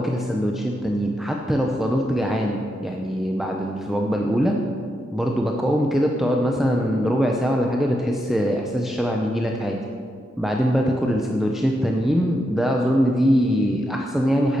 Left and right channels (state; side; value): normal; both; correlation 0.84